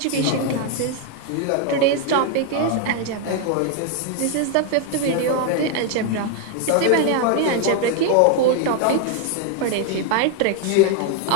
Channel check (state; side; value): different; both; correlation 0.00